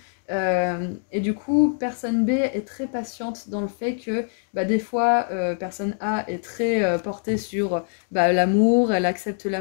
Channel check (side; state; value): right; silent; digital silence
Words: Et du coup, personne B est très patiente dans le fait que des fois, personne A est très portée sur l'amour, elle accepte